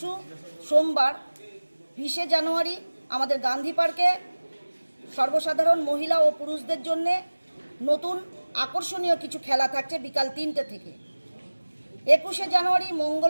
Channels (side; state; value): both; inverted; correlation -1.00